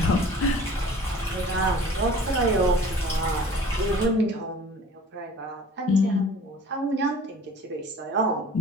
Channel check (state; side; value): normal; both; correlation 0.47